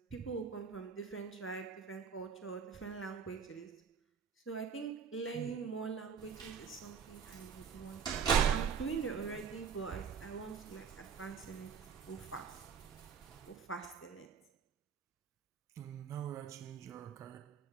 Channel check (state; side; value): quieter; left; 6.7 dB